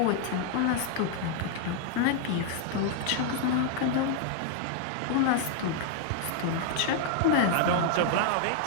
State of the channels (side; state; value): both; different; correlation 0.00